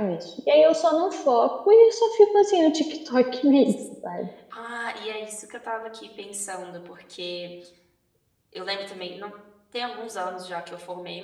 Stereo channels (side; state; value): both; identical; correlation 1.00